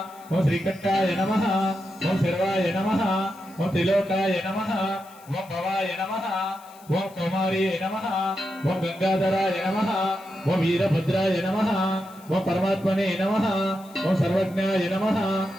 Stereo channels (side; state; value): left; noise; hiss, 25 dB below the sound